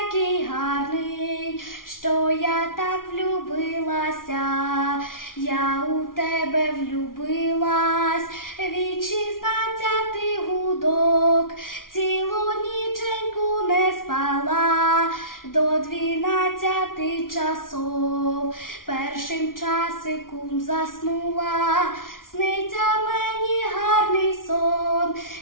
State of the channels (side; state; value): right; late; 0.90 ms